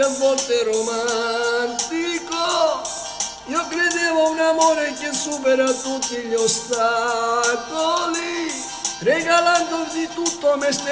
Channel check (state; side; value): identical; both; correlation 1.00